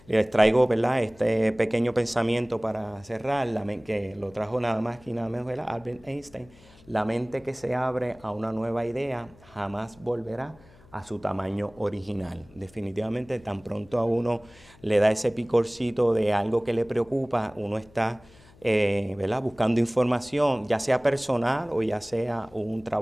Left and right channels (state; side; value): noise; left; hum, 26 dB below the sound